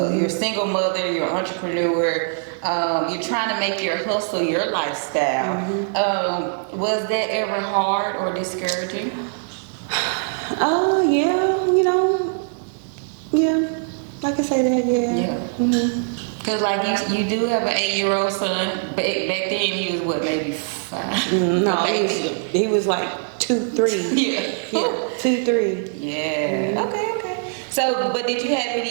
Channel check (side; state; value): left; silent; digital silence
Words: You're a single mother, you're an entrepreneur. You're trying to make your hustle your lifestyle. Was that ever hard or discouraging? Yeah, I can say that. Yeah. Because you do have an 8-year-old son. Back then he was what, maybe 5? No, he was like 2-3. Yeah. 2-3. Yeah. Okay. So, but did you have